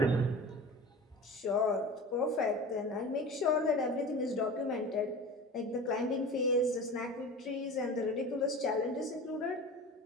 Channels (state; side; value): normal; both; correlation 0.35